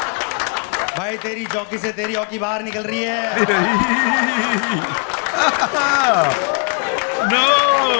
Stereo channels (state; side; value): quieter; right; 38.7 dB